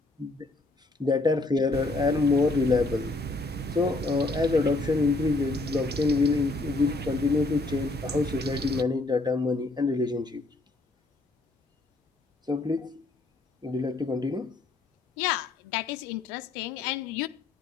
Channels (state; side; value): quieter; right; 3.1 dB